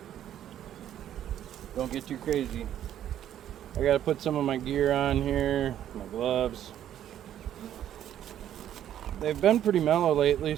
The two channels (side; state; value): left; quieter; 11.0 dB